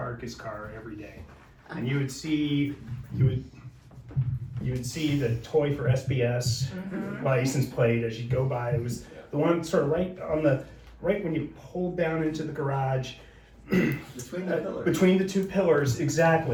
his car every day. And you would see the Toy for SBS license plate as you go by. It was the one sort of right when you pulled down into the garage. Between the pillars. Between the two pillars,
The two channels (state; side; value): identical; both; correlation 1.00